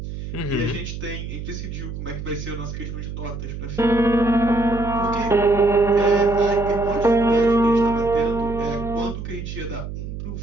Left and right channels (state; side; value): noise; right; hum, 8 dB below the sound